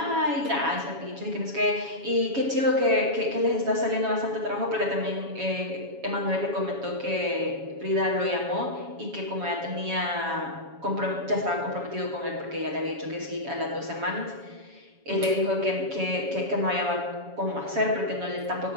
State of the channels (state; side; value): late; left; 7.2 ms